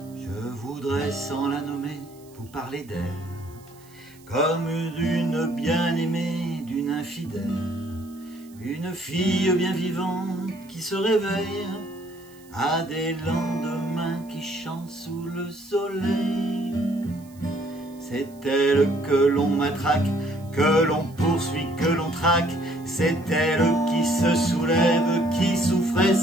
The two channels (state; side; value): noise; right; hiss, 27 dB below the sound